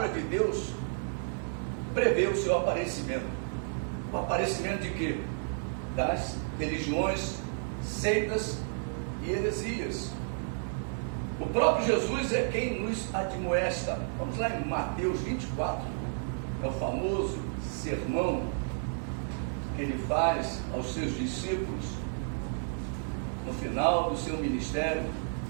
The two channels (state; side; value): silent; left; digital silence